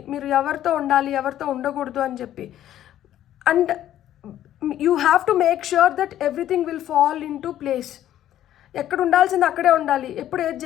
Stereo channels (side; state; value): right; quieter; 12.1 dB